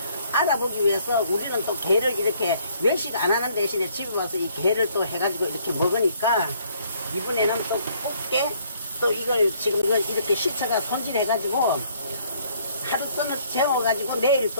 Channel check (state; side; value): inverted; both; correlation -0.64